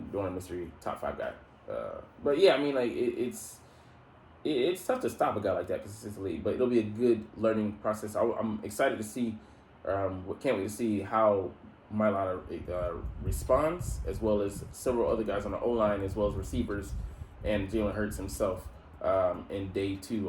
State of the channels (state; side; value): identical; both; correlation 1.00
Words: Dorn Mystery, top 5 guy. But yeah, it's tough to stop a guy like that consistently, but it'll be a good learning process. I'm excited to see, can't wait to see how Mailata responds, as well as several other guys on the O-line, as well as receivers, and Jalen Hurts himself in day